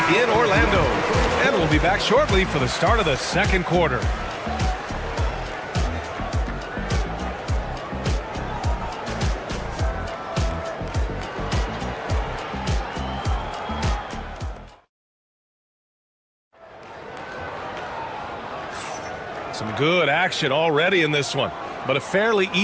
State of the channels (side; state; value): both; identical; correlation 1.00